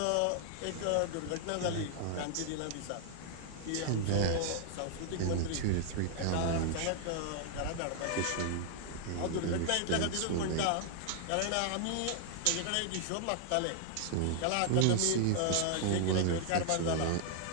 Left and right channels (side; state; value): both; different; correlation 0.00